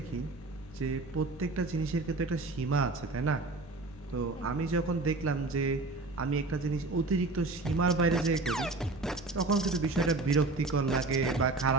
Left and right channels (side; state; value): left; quieter; 3.3 dB